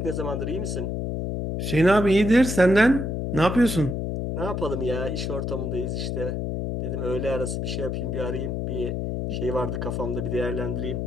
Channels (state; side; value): noise; left; hum, 2 dB below the sound